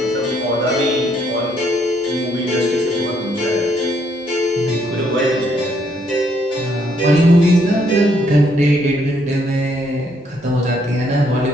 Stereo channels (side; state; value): both; normal; correlation 0.71